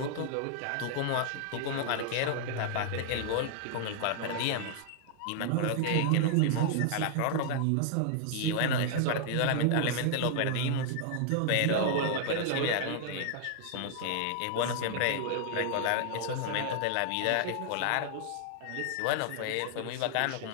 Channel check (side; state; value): both; different; correlation 0.00